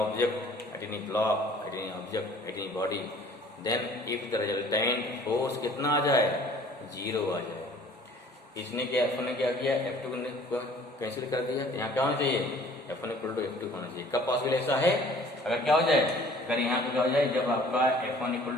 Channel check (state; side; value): normal; both; correlation 0.52